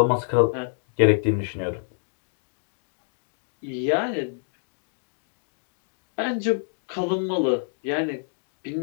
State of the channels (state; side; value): silent; right; digital silence